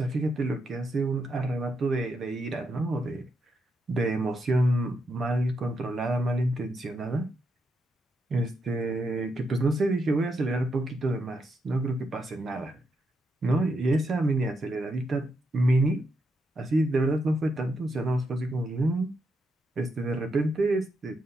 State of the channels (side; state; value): both; normal; correlation 0.81